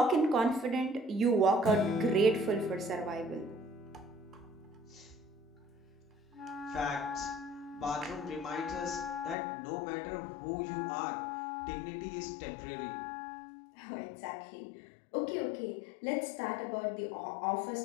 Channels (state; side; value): drops out; right; at 9.3 s